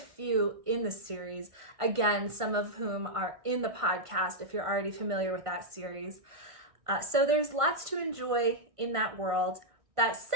in the series. Again, some of whom are in the podcast if you're already familiar with that series. So there's lots to enjoy in that world. That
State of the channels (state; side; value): late; left; 1.5 ms